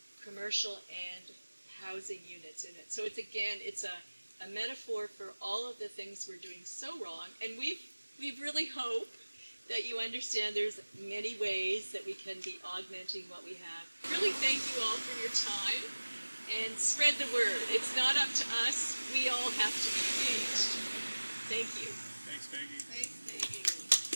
commercial and housing units in it. So it's a metaphor for all of the things we're doing so wrong, and we've we really hope that you understand there's many ways that we can be augmenting what we have. Really thank you all for your time and spread the word. It's not up to us. We all have to be engaged. Thank you. Thanks, Peggy. Thanks, Peggy.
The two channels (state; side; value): inverted; both; correlation -1.00